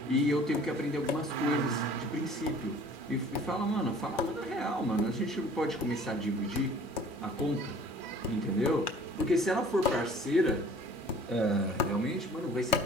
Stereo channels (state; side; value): normal; both; correlation 0.50